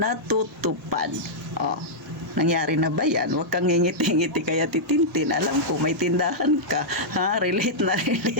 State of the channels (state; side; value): normal; both; correlation -0.09